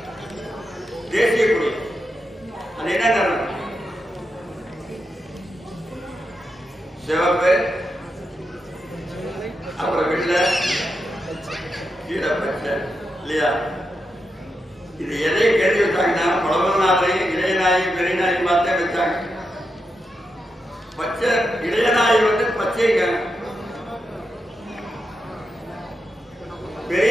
தேசிய கொடி, அது என்ன காரணம்? சிவப்பு, அப்புறம் வெள்ளை, கீழே பச்சை இல்லையா? இது எதை கருதி வச்சாங்கன்னா பழமநாதரையும் இளையநாயகி பெரியநாயகி பார்த்தே வச்சாங்க. பச்சை இளையநாயகி வந்து பச்சைங்க,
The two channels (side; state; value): both; normal; correlation 0.86